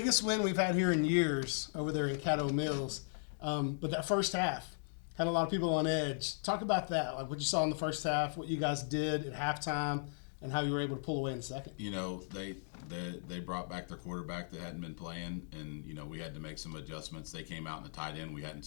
win we've had here in years over there in Caddo Mills. But that first half had a lot of people on edge. Talk about that, like what you saw in the first half, what you guys did at halftime, and how you were able to pull away in the second. You know, they brought back their quarterback that hadn't been playing, and, you know, we had to make some adjustments. They came out in a tight end. We hadn't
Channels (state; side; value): silent; right; digital silence